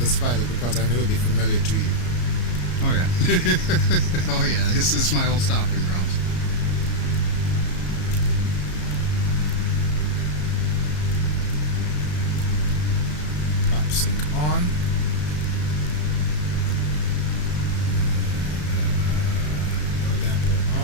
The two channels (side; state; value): right; late; 33 ms